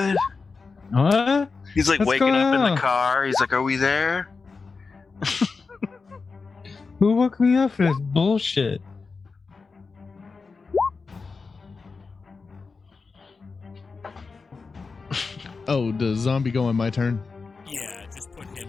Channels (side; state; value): right; quieter; 4.5 dB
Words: What? He's What's waking going up in on? the car. He's like, are we there? Who woke me up for this bullshit? Oh, does zombie go on my turn? Yeah, just put